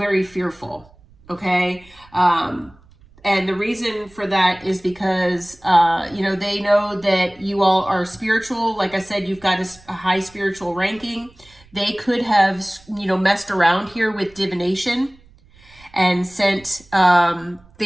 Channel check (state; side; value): noise; right; rumble, 27 dB below the sound